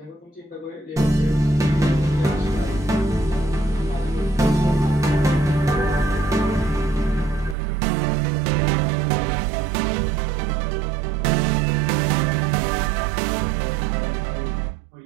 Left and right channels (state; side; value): drops out; left; at 7.6 s